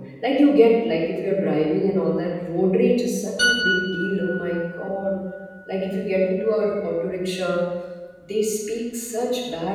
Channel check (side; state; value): both; identical; correlation 1.00